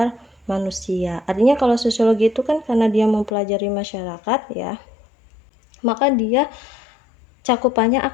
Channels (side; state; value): right; drops out; at 3.3 s